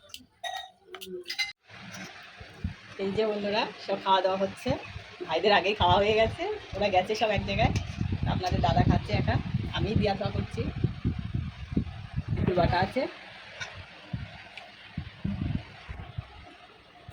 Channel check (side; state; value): both; identical; correlation 1.00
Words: এই যে বন্ধুরা সব খাওয়া দাওয়া হচ্ছে। ভাইদের আগেই খাওয়া হয়ে গেছে, ওরা গেছে সব এক জায়গায়। আপনাদের দাদা খাচ্ছে একা, আমি দিয়া খাওয়া করছি। একটু বাটা আছে।